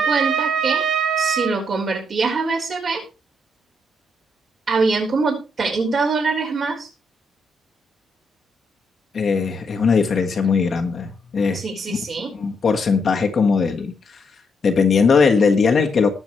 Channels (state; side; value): normal; both; correlation 0.77